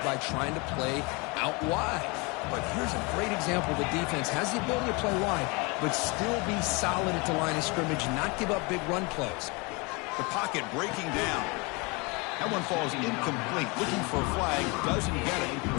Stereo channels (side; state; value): right; quieter; 28.4 dB